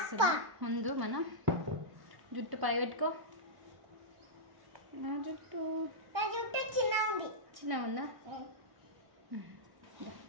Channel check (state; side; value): late; left; 1.3 ms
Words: ముందు మనం జుట్టు పై పెట్టుకో. జుట్టు చిన్నగా ఉందా?